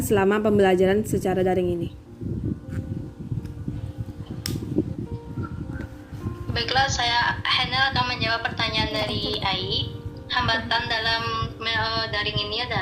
selama pembelajaran secara daring ini? Baiklah, Hanel akan menjawab pertanyaan dari Ai. Hambatan dalam daring ini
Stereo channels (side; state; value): both; identical; correlation 1.00